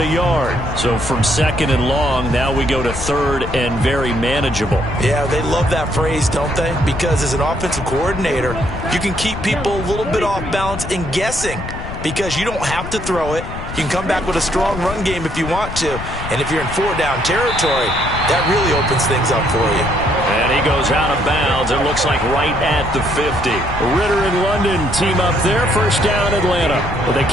yard. So from 2nd and long, now we go to 3rd and very manageable. Yeah, they love that phrase, don't they? Because as an offensive coordinator, you can keep people a little bit off balance and guessing because you don't have to throw it. You can come back with a strong run game if you want to. And if you're in 4-down territory, that really opens things up for you. And he goes out of bounds. It looks like right at the 50. Ritter and London team up there. First down, Atlanta. Well, they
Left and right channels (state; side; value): noise; left; rumble, 9 dB below the sound